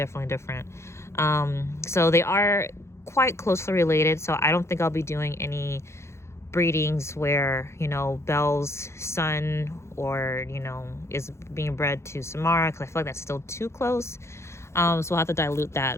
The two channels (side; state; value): right; late; 0.13 ms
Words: different. So they are quite closely related. So I don't think I'll be doing any breedings where Belle's son or is being bred to Samara, because I feel like that's still too close. So we'll have to dilute